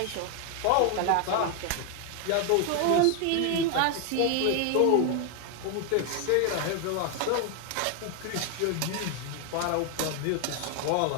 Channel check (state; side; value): different; both; correlation 0.01